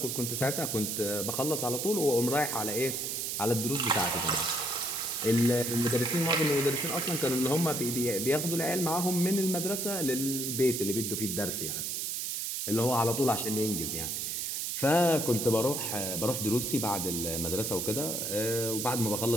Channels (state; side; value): noise; right; hiss, 2 dB below the sound